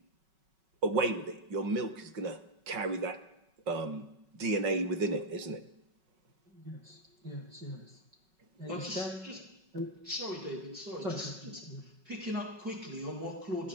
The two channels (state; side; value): late; left; 5.3 ms